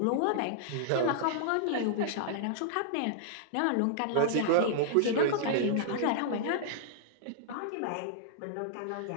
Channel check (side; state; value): both; different; correlation -0.02